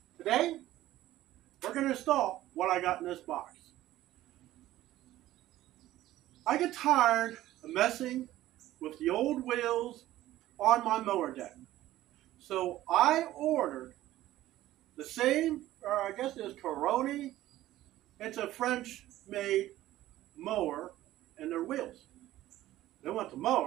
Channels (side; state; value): left; quieter; 14.8 dB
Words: Today, we're going to install what I got in this box. I get tired of messing with the old wheels on my mower deck. So I ordered the same, or I guess it's Coroni. It's a French-made mower and their wheels. They want the